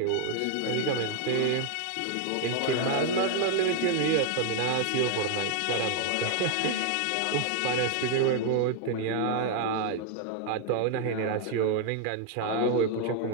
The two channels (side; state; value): both; different; correlation 0.00